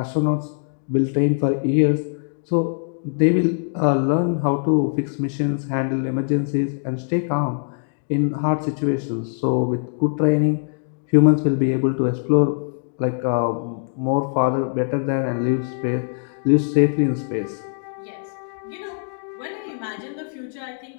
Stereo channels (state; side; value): silent; right; digital silence